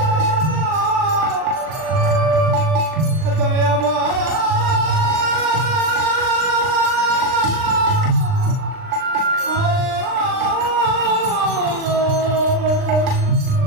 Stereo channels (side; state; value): left; late; 39 ms